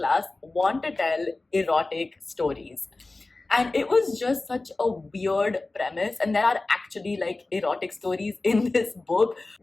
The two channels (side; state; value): right; quieter; 3.2 dB